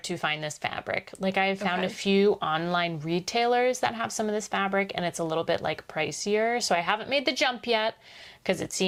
to find this fabric. Like I have found a few online retailers that have some of this fabric, and it's a little bit like pricier. So I haven't made the jump yet because it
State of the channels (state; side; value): identical; both; correlation 1.00